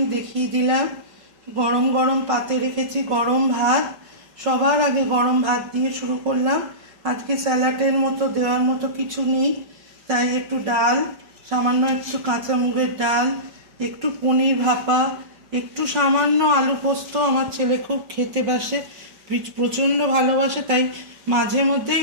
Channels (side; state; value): left; late; 5.5 ms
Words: দেখিয়ে দিলাম। গরম গরম পাতে রেখেছি গরম ভাত। সবার আগে গরম ভাত দিয়ে শুরু করলাম। আজকে স্যালাডের মতো দেওয়ার মতো কিছু নেই, তাই একটু ডাল, সামান্য একটু কাঁচা মুগের ডাল, একটু পনির ভাপা, একটু সামান্য আলু পোস্ত। আমার ছেলে খুব খেতে বাসে, প্রচণ্ড ভালোবাসে, তাই মাঝে মধ্যেই